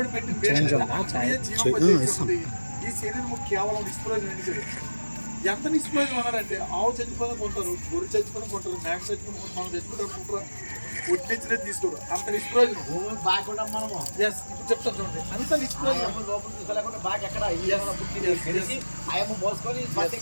పెట్టిన పేరు జీవింపజేస్తుంది. ఈ శరీరం కేవలం నిష్ప్రయోజనం ఎన్నికలు. ఎంత నిష్ప్రయోజనం అన్నారంటే ఆవు చచ్చిపోయిన కొంటారు, గొర్రె చచ్చిపోయిన కొంటారు, మేక చచ్చిపోయిన కొంటారు, మనం చచ్చిపోయిన కొంటారు, ఒట్టించినది తీసుకోరు. అంత నిష్ప్రయోజనం. ఎస్ ఇప్పుడు చెప్తాను చూడండి, అంత నిష్ప్రయోజనం.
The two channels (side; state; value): both; inverted; correlation -1.00